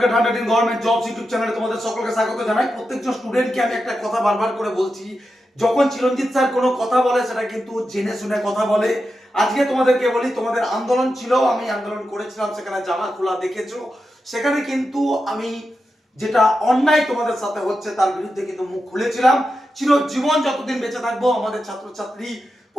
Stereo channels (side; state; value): both; normal; correlation 0.89